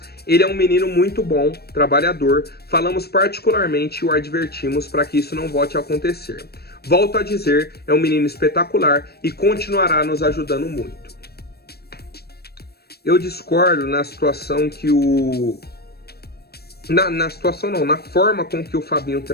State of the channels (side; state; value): right; late; 0.46 ms